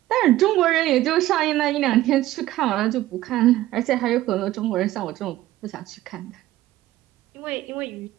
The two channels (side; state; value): left; quieter; 15.4 dB